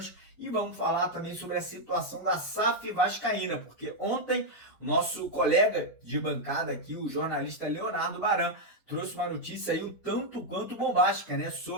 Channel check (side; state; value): right; late; 1.6 ms